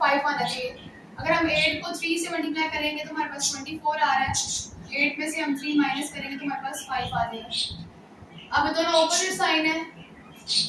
आना चाहिए। अगर हम 8 को 3 से मल्टीप्लाई करेंगे तो हमारे पास 24 आ रहा है, 8 में से हम 3 माइनस करेंगे तो हमारे पास 5 आ जाएगा। अब दोनों ऑपोजिट साइन है,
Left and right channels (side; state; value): both; identical; correlation 1.00